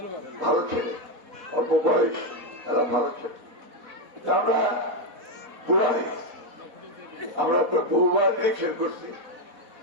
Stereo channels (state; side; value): late; left; 4.1 ms